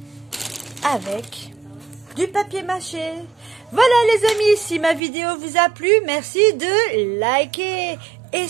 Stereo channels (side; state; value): left; drops out; at 5.0 s